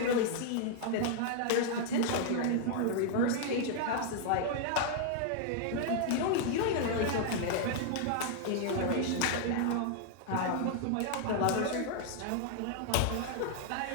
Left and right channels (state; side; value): different; both; correlation 0.00